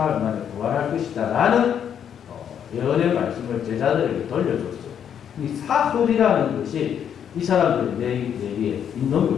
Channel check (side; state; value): right; quieter; 8.7 dB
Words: 만에 부활할 것이다 라는 예언의 말씀을 제자들에게 돌려줬어요. 이 사흘이라는 것이 이 사람들의 내리에 있는